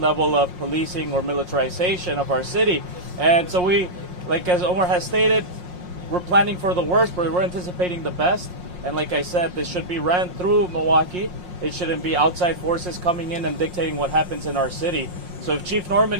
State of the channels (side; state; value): left; late; 5.6 ms